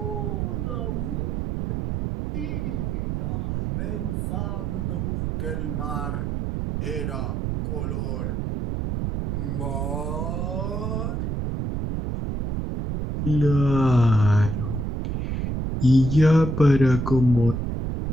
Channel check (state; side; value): noise; right; rumble, 1 dB below the sound